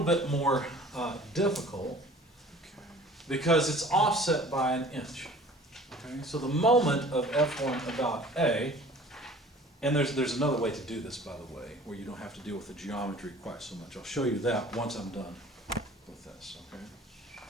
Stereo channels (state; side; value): normal; both; correlation 0.48